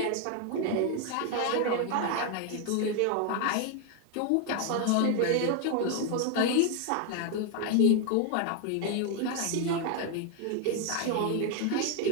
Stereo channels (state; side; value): different; both; correlation 0.01